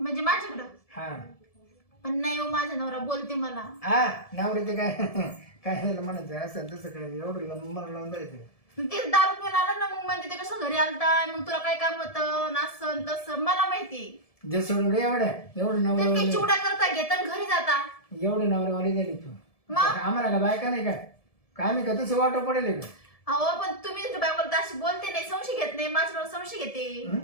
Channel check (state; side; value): late; right; 1.7 ms